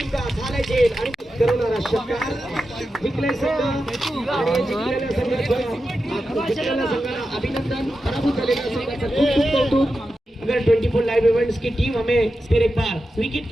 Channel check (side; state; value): both; normal; correlation 0.90